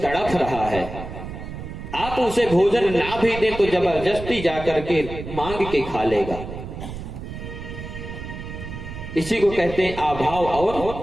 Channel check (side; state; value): right; noise; rumble, 9 dB below the sound